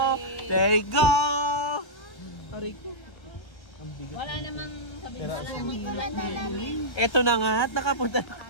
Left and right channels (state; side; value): late; right; 1.4 ms